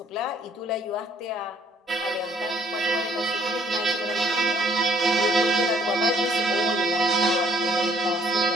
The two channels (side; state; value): both; normal; correlation 0.62